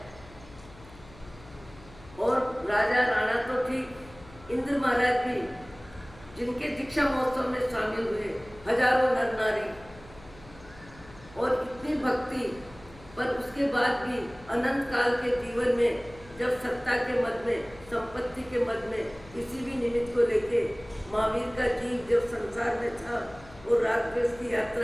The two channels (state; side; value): noise; left; hum, 21 dB below the sound